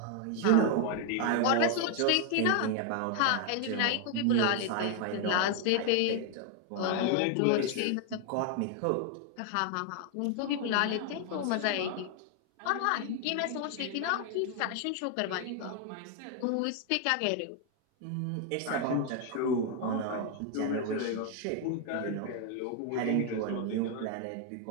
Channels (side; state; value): both; different; correlation 0.00